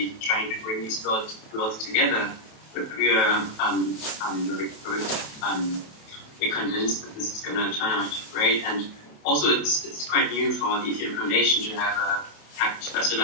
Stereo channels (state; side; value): late; right; 28 ms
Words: trying to bring these worlds together, but we are very convinced that this is going to turn out great. And also it's quite new for the Ethereum Foundation to have a